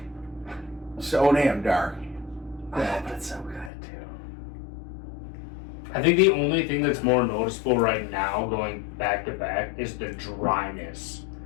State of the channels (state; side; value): drops out; right; at 3.7 s